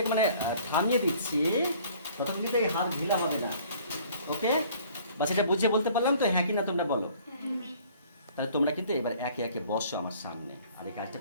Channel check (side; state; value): both; inverted; correlation -0.55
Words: মানে থামিয়ে দিচ্ছি, ততক্ষণ কিন্তু এই হাত ঢিলা হবে না। ওকে, বা সেটা বুঝিয়ে বলতে পারলাম তো, হ্যাঁ কি না তোমরা বলো? তাহলে তোমরা কিন্তু এবার একে একে বসো আমার সামনে আর এই কাজটা